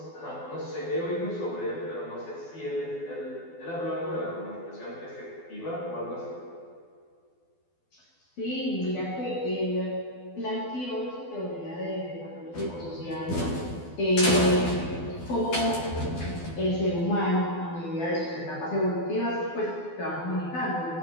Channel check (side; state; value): right; late; 12 ms